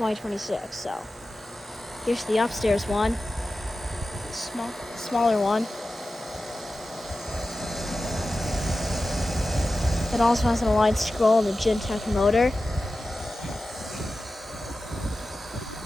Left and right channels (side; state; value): both; normal; correlation 0.94